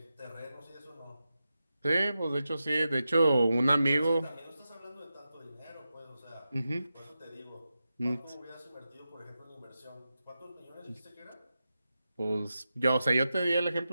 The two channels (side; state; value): both; inverted; correlation -0.91